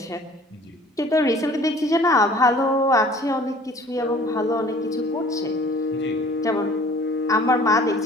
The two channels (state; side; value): normal; both; correlation 0.50